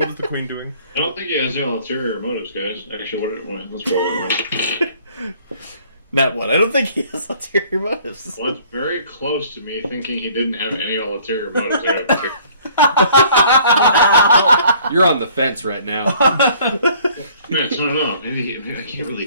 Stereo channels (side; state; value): both; inverted; correlation -0.56